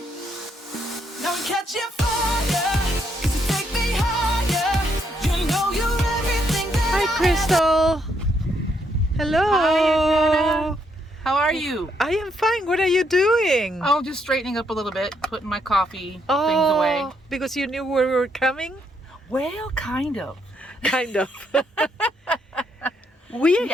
Now I'm catching fire, 'cause you take me higher. You know you're everything that Hi, Crystal. Hello. Hi, Adriana. How are you? I am fine. What are you doing? Oh, just straightening up a little bit, putting my coffee things away. Because you knew we were coming? Well, kind of. Kind of. We are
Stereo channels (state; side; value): normal; both; correlation 0.75